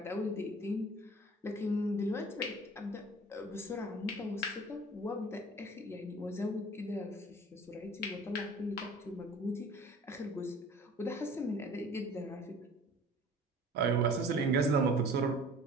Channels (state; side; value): normal; both; correlation 0.46